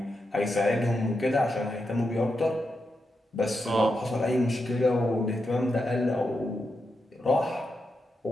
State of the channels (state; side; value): normal; both; correlation 0.86